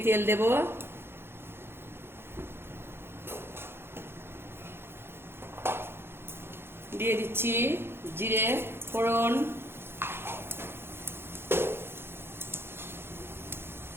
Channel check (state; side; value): late; left; 0.11 ms